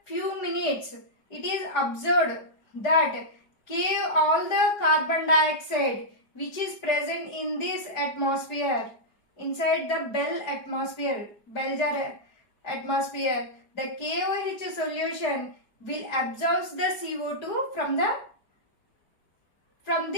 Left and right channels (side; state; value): right; late; 4.8 ms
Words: few minutes, it is observed that all the carbon dioxide which is present in this atmosphere, inside the bell jar atmosphere, the KOH solution will absorb the CO2 from